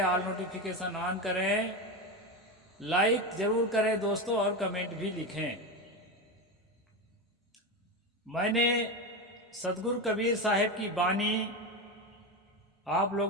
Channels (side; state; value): both; normal; correlation 0.17